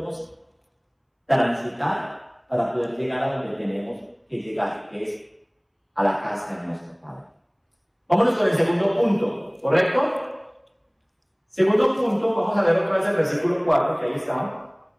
transitar para poder llegar a donde tenemos que llegar, que es a la casa de nuestro Padre. Vámonos con el segundo punto, ¿correcto? Segundo punto, vamos a ver otra vez el versículo 4, que ahí está.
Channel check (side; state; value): both; identical; correlation 1.00